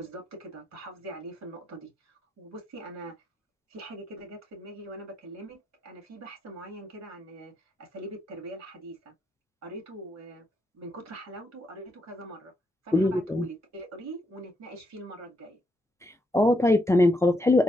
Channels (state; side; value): normal; both; correlation 0.80